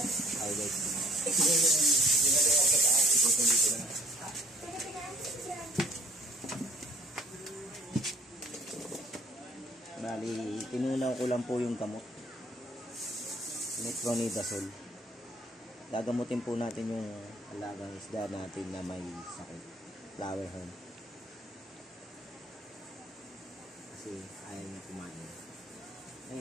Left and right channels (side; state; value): both; normal; correlation 0.59